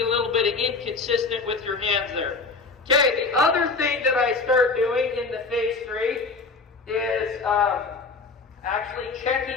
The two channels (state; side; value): quieter; right; 4.1 dB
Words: a little bit inconsistent with your hands there. Okay, the other thing that I start doing in the phase 3 is actually